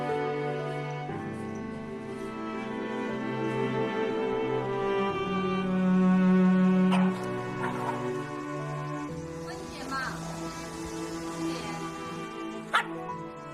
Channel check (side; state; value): both; identical; correlation 1.00